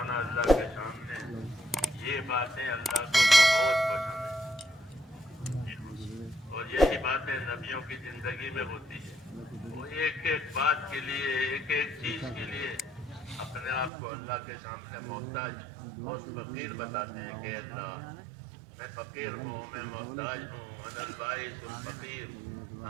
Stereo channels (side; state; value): left; drops out; at 13.9 s